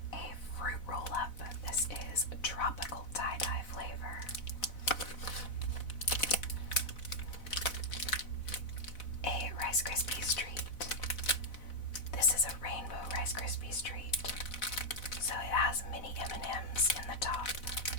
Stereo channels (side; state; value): right; late; 4.0 ms